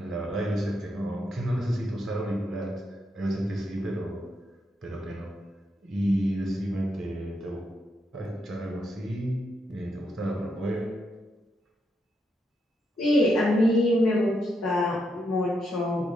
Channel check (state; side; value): normal; both; correlation 0.80